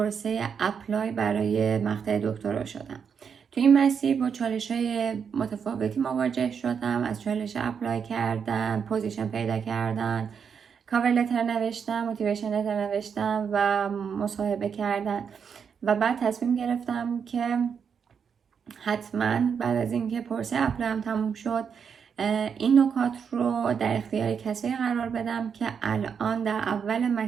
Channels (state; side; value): quieter; left; 6.8 dB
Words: اپلای برای مقطع دکترا شدم. تو این مسیر با چالش‌های متفاوتی مواجه شدم، از چالش اپلای کردن، پوزیشن پیدا کردن، کاور لتر نوشتم، موتیویشن لتر نوشتم و مصاحبه کردن و بعد تصمیم گرفتم که حتما بعد از اینکه پروسه اپلایم تموم شد این نکات رو در اختیار کسایی قرار بدم که الان در اول